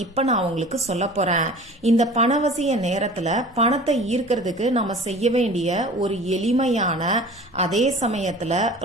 இப்ப நான் உங்களுக்கு சொல்ல போறேன். இந்த பணவசிய நேரத்துல பணத்தை ஈர்க்கிறதுக்கு நம்ம செய்ய வேண்டிய ஒரு எளிமையான அதே சமயத்துல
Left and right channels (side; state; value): both; normal; correlation 0.42